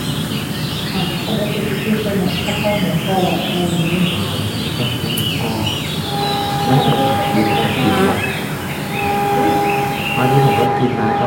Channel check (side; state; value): both; identical; correlation 1.00